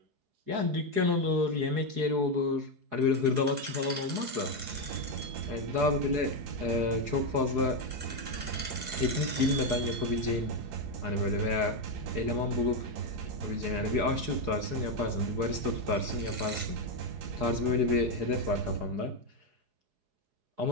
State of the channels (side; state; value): left; late; 4.8 ms